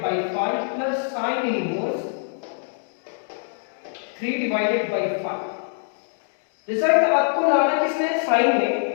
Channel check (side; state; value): right; silent; digital silence